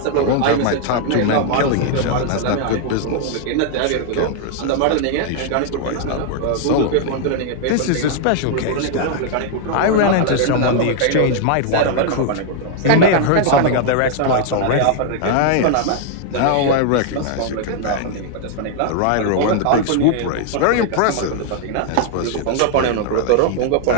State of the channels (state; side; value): different; both; correlation 0.00